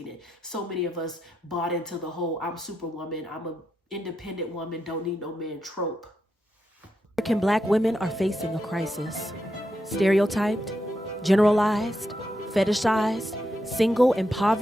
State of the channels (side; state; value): both; normal; correlation 0.84